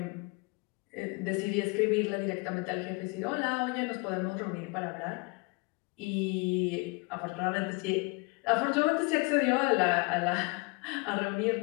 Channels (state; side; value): quieter; right; 28.7 dB